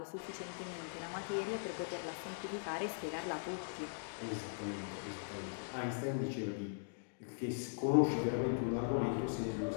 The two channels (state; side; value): silent; right; digital silence